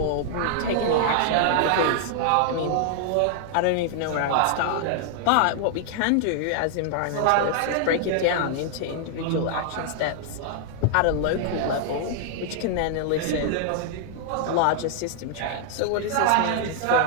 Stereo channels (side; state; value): both; different; correlation -0.01